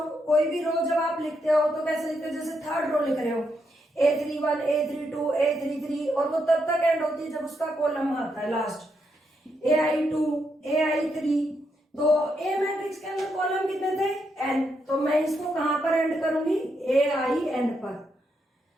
कोई भी रो जब आप लिखते हो तो कैसे लिखते हो, जैसे थर्ड रो लिख रहे हो, a31 a32 a33, और वो तब तक एंड होती है जब उसका कॉलम आता है लास्ट, ai2 ai3, तो ए मैट्रिक्स के अंदर कॉलम कितने थे, n, तो मैं इसको कहां पर एंड करूंगी, ain पर।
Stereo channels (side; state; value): both; normal; correlation 0.80